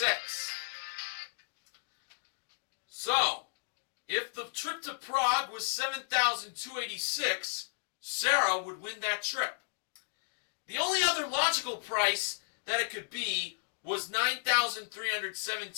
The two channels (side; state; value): right; silent; digital silence